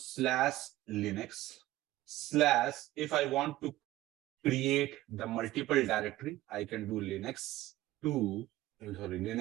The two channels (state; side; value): quieter; left; 16.2 dB